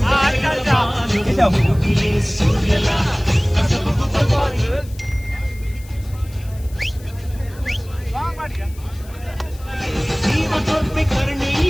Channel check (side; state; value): left; noise; hiss, 23 dB below the sound